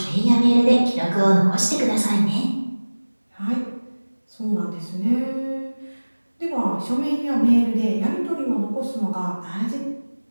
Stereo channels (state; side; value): inverted; both; correlation -1.00